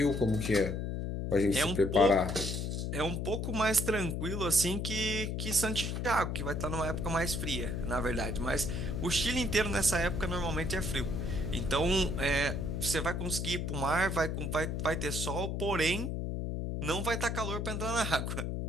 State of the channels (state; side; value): noise; left; hum, 2 dB below the sound